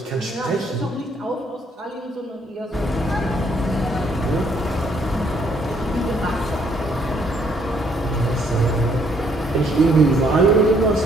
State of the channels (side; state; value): both; normal; correlation 0.68